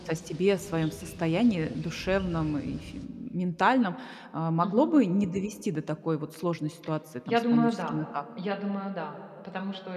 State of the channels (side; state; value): both; identical; correlation 1.00